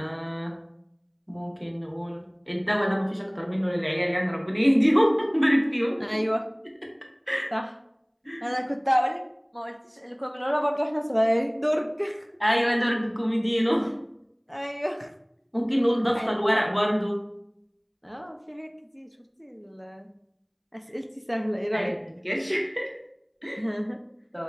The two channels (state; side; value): identical; both; correlation 1.00